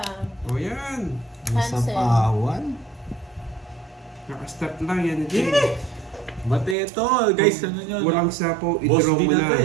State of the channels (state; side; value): drops out; left; at 6.8 s